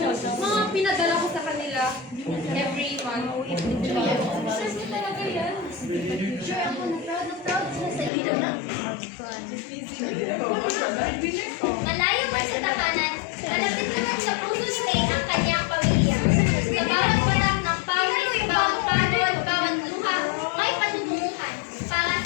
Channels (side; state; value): right; drops out; at 8.1 s